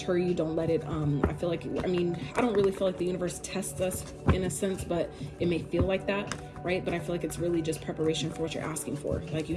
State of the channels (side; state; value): both; identical; correlation 1.00